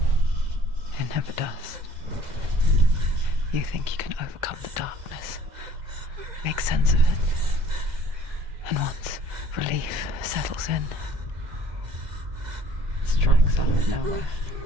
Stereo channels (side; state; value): left; late; 2.0 ms